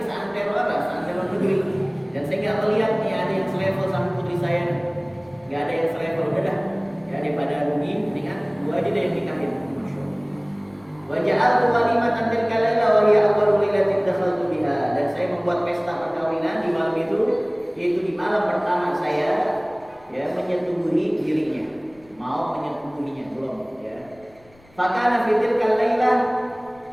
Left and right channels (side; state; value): left; noise; rumble, 28 dB below the sound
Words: seantero apa? Seantero negeri. Dan saya nggak melihat nih ada yang selevel sama putri saya. Nggak ada yang selevel, udah dah. Ya, daripada rugi, mendingan gua aja deh yang nikahin. Wa ja'altu walimatan tilka laila wa hiya awwalu lailatin dakhaltu biha. Dan saya membuat pesta perkawinan di malam itu, yaitu di malam pertama saya, ya, menyetubuhi dirinya. Mau menyetubuhinya belum, ya. Fakana fi tilka laila,